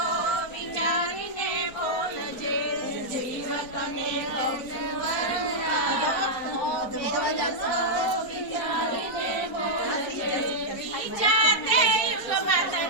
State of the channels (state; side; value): late; right; 4.3 ms